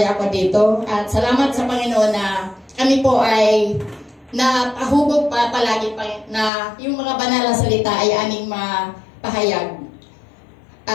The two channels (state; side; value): drops out; right; at 6.5 s